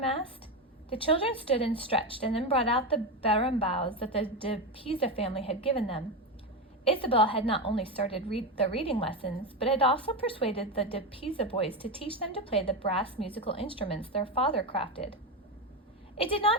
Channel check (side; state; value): both; normal; correlation 0.15